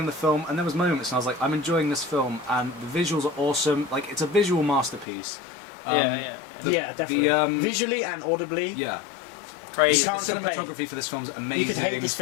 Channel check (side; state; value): right; drops out; at 5.1 s